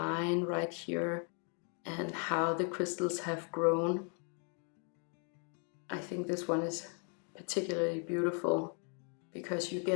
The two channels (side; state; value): right; quieter; 39.8 dB